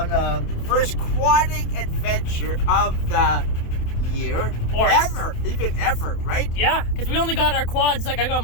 the first quadding adventure of the year. Or even ever, right? Yeah, because we only got our quads, like I got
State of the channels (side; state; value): right; late; 27 ms